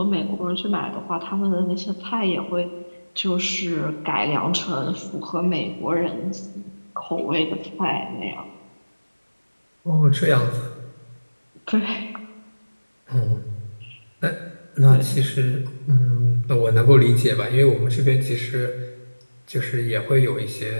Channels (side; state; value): both; inverted; correlation -1.00